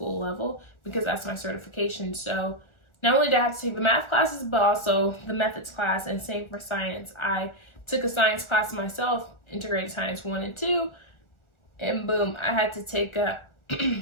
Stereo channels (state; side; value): late; right; 1.4 ms